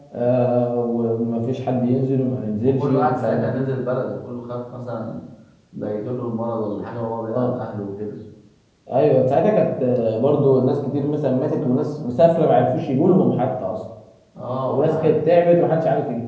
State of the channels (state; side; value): identical; both; correlation 1.00